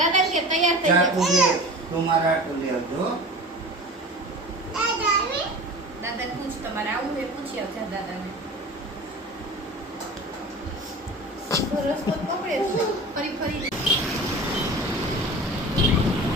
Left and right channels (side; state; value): both; normal; correlation 0.37